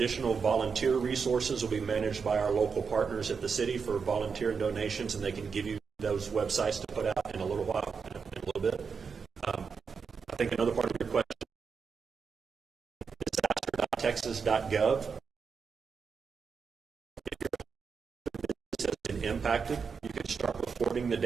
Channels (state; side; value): quieter; left; 5.7 dB